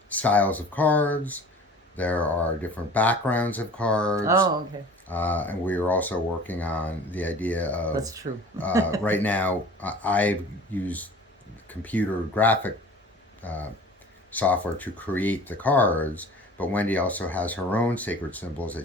styles of cards. There are different backgrounds of cards. Oh, okay. And we are also working on the idea of. That's true. Right now, I use computer graphic software to create the cards, but Wendy also has her own sacred symbols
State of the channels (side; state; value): both; normal; correlation 0.43